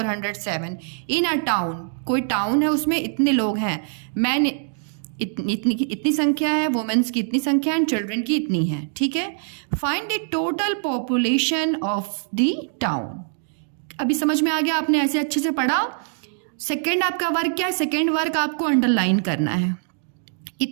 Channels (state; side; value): silent; left; 63 dB below the other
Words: इन अ टाउन, कोई टाउन है उसमें इतने लोग हैं. मैन इतनी संख्या है, वुमेन्स की इतनी संख्या है, एंड चिल्ड्रन की इतनी है. ठीक है, find the total population of the town. अभी समझ में आ गया? आपने ऐसे अच्छे से पढ़ा. सेकेंड आपका वर्क क्या है? सेकेंड वर्क आपको अंडरलाइन करना है.